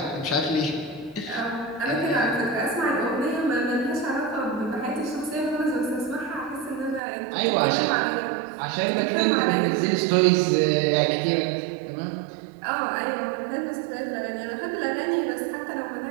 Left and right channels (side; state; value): left; drops out; at 7.0 s